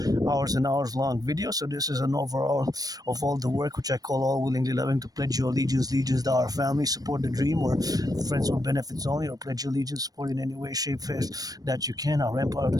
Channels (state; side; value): late; left; 0.18 ms